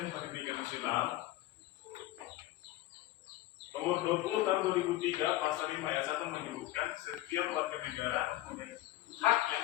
Pendidikan Nasional Nomor 20 tahun 2003 pasal 5 ayat 1 menyebutkan setiap warga negara mempunyai hak yang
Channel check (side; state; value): right; quieter; 16.1 dB